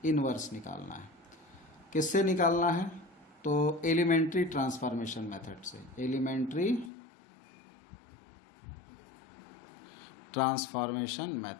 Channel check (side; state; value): right; drops out; at 6.9 s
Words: इन्वर्स निकालना है। किससे निकालना है? तो एलिमेंट्री ट्रांसफॉर्मेशन मेथड से। एलिमेंट्री ट्रांसफॉर्मेशन